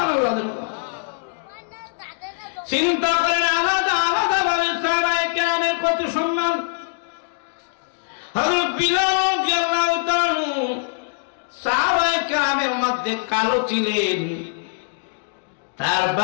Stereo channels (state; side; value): silent; right; digital silence